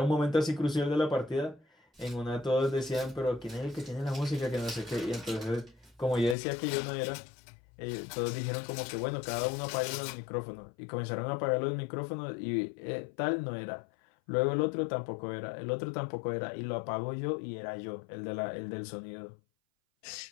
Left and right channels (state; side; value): drops out; right; at 6.4 s